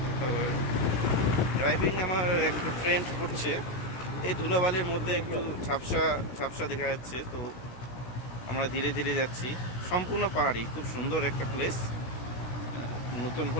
ড্রাইভিং আমার একটু ফ্রেন্ড করছে, এই ধুলাবালির মধ্যে একটু ঝাপসা ঝাপসা দেখা যাচ্ছে। তো আমরা ধীরে ধীরে যাচ্ছি, সম্পূর্ণ পাহাড়ি, খুব সুন্দর একটা প্লেস। নতুন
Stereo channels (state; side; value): late; right; 16 ms